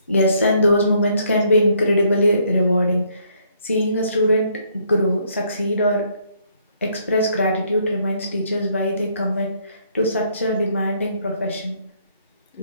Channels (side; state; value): both; inverted; correlation -0.68